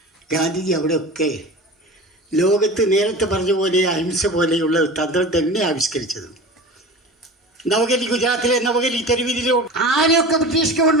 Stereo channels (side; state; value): both; normal; correlation 0.34